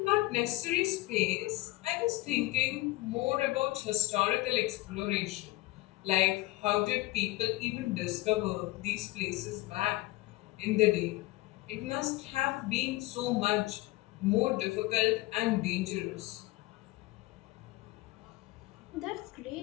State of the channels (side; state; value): right; quieter; 19.2 dB